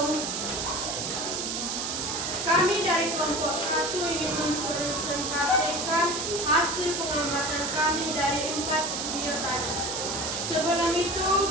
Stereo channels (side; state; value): right; noise; hiss, 2 dB below the sound